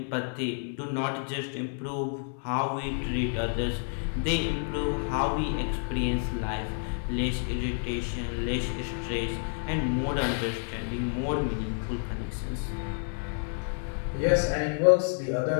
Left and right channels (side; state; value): right; silent; 58 dB below the other